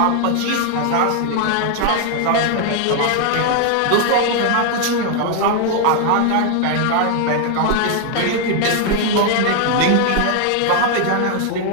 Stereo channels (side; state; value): both; different; correlation 0.00